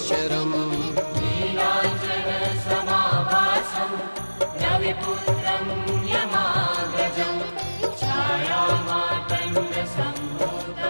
नीलाञ्जनसमाभासं रविपुत्रं यमाग्रजं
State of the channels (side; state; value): both; inverted; correlation -1.00